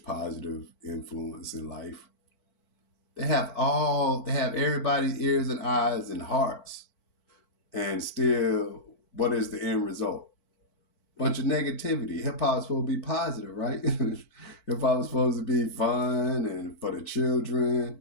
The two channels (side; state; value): right; late; 4.5 ms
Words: positive influence in life. They have everybody's ears and eyes and hearts. And still, what is the end result? Bunch of negativity. Hip hop is supposed to be positive, right? Hip hop is supposed to be fun and for the